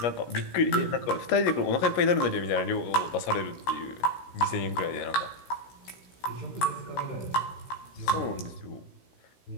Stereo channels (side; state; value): right; late; 16 ms